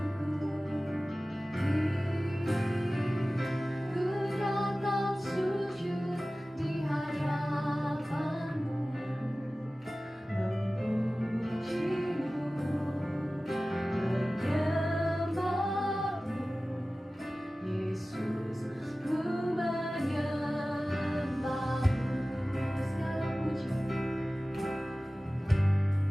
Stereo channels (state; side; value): normal; both; correlation 0.97